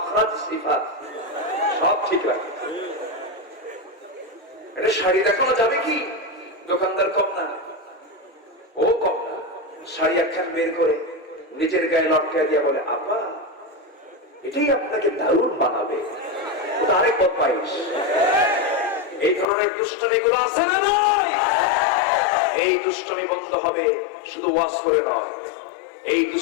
সিফাত সব ঠিক রাখে, এটা শাড়ি দেখানো যাবে কি? দোকানদার কম না, ও কম না, শাড়ি একখান বের করে নিজের গায়ে লটকায় দিয়া বলে আপা এটাই আপনাকে দারুণ বানাবে। ওটা আরেক বদমাইশ। এই ধরনের দুষ্টমি গুলো আছে না নাই? এই দুষ্টমি বন্ধ হবে শুধু ওয়াজ করে নয়, এই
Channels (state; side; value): drops out; right; at 19.5 s